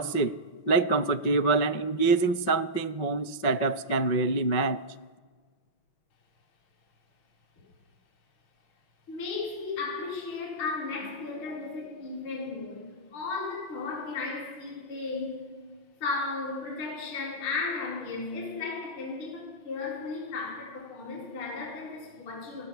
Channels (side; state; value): right; late; 5.4 ms